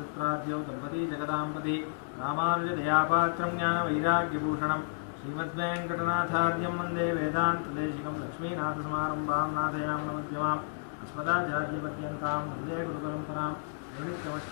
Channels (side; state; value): right; silent; digital silence